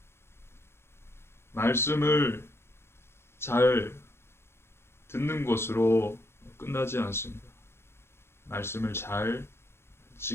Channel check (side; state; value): right; late; 0.12 ms